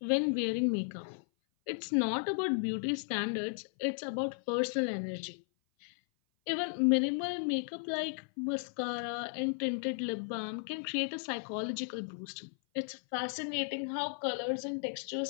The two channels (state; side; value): silent; right; 55 dB below the other